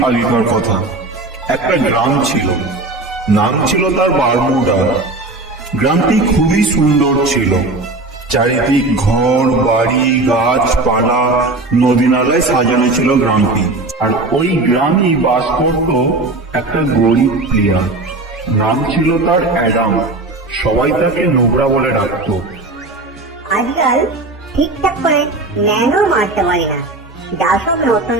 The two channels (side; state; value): left; quieter; 3.0 dB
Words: আগেকার কথা। একটা গ্রাম ছিল, নাম ছিল তার বারমুডা। গ্রামটি খুবই সুন্দর ছিল। চারিদিক ঘর বাড়ি গাছপালা নদী নালায় সাজানো ছিল গ্রামটি। আর ওই গ্রামেই বাস করত একটা গরিব প্লেয়ার। নাম ছিল তার অ্যাডাম। সবাই তাকে নোবরা বলে ডাকতো। আজকাল ঠিকঠাক করে ন্যানো মারতে পারি না। যা সব নতুন